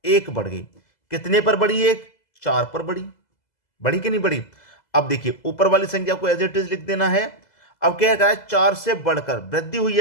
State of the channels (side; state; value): right; late; 2.0 ms